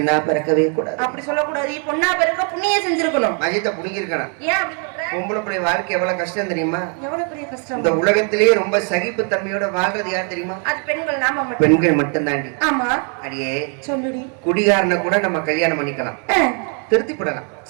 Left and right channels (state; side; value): quieter; left; 39.9 dB